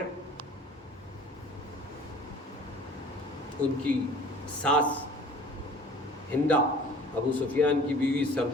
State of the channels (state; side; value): normal; both; correlation 0.47